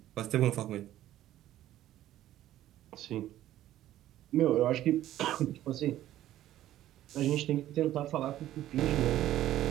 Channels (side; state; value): left; quieter; 13.4 dB